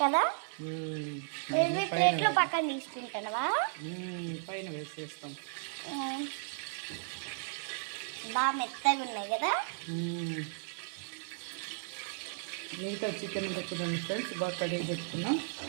కదా. ప్లేట్లో పక్కన తీసుకుంటావా? పైన వేసేస్తాం. బాగా మెత్తగా ఉన్నాయి కదా. మిగతా చికెన్ చూడండి ఫ్రెండ్స్, బాగా కడిగి పెట్టుకున్నాం.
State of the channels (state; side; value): silent; left; digital silence